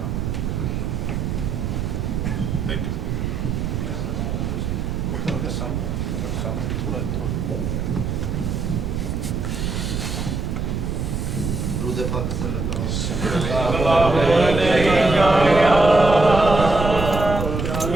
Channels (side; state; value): right; noise; rumble, 2 dB below the sound